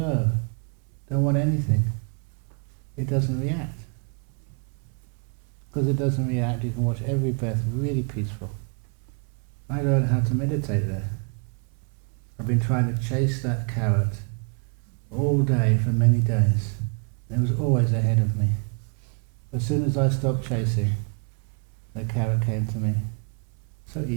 don't want anything, it doesn't react. Because it doesn't react, you can watch every breath really peaceful. I learned how to meditate there. I've been trying to chase that carrot all day for many days. And it was always ahead of me. As soon as I stopped chasing, the carrot came to me. So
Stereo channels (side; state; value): left; quieter; 39.1 dB